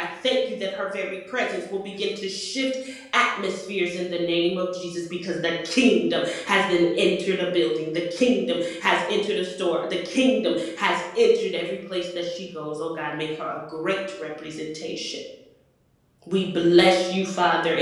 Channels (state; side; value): identical; both; correlation 1.00